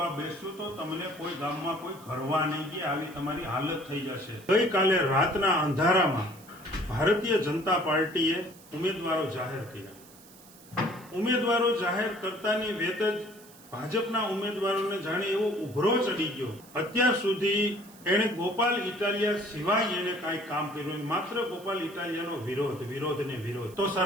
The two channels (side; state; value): right; noise; hiss, 22 dB below the sound